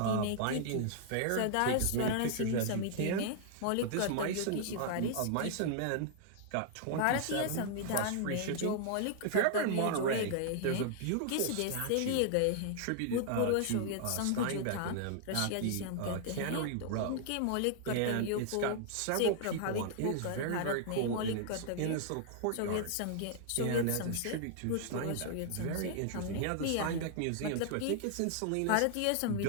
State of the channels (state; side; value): different; both; correlation -0.01